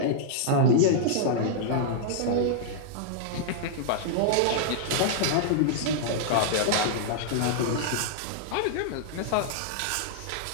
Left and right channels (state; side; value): different; both; correlation -0.01